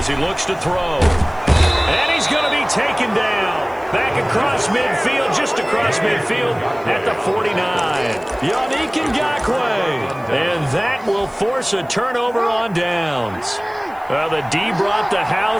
he looks to throw. And he's going to be taken down. Back across midfield, just across midfield at the 49. Yannick Ngakoue. And that will force a turnover on downs. The D brought the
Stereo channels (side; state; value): left; noise; hiss, 29 dB below the sound